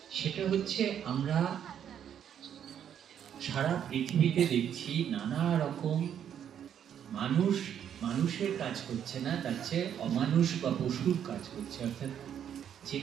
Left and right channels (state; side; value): quieter; left; 9.2 dB